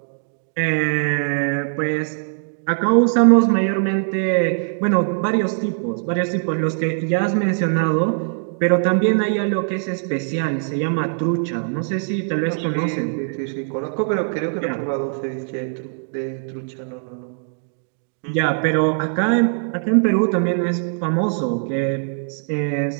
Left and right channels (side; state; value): left; silent; digital silence